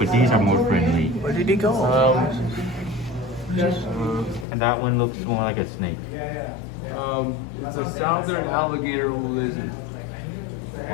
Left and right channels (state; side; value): drops out; right; at 4.5 s